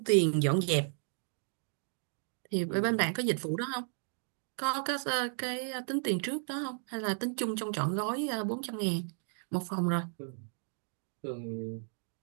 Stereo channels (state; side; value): silent; left; 55 dB below the other